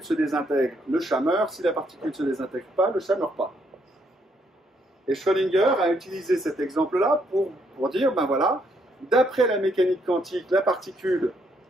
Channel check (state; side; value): normal; both; correlation 0.72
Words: se désintègre, le chat meurt. Si la particule ne se désintègre pas, le chat ne meurt pas. Et Schrödinger a utilisé cet exemple-là pour dire, ben voilà, d'après la mécanique quantique, la particule,